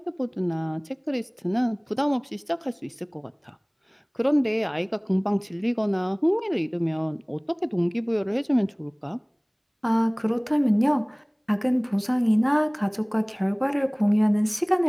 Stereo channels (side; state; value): both; identical; correlation 1.00